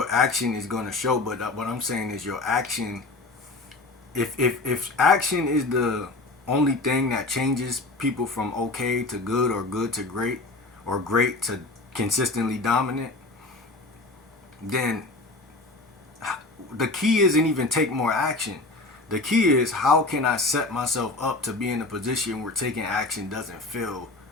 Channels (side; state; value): right; quieter; 3.2 dB